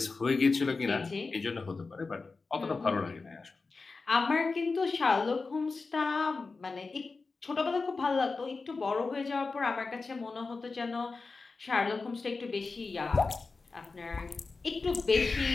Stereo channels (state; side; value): quieter; right; 4.1 dB